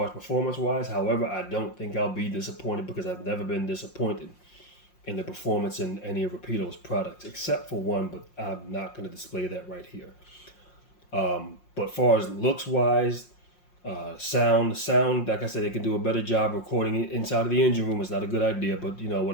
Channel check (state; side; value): late; right; 5.6 ms